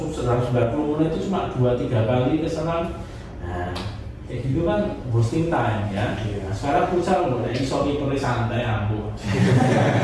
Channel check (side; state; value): both; identical; correlation 1.00